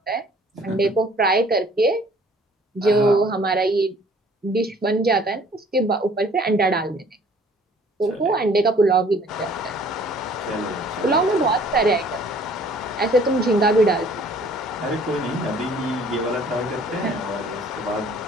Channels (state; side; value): normal; both; correlation 0.55